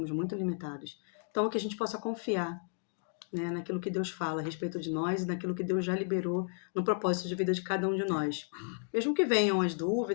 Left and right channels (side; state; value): right; silent; 56 dB below the other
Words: muito limitados. Então, que a gente possa confiar, né, naquilo que Deus fala a respeito de nós e naquilo que Deus já liberou no propósito de vida de cada um de nós. Mesmo que venham as